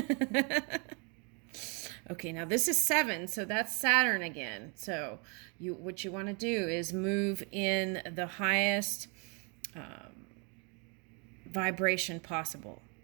Okay, now this is 7, so that's Saturn again. So what you want to do is move in the highest vibration possible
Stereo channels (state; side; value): quieter; left; 35.0 dB